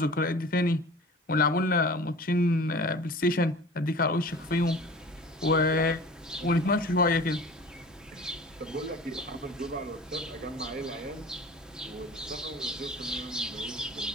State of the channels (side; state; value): both; normal; correlation 0.41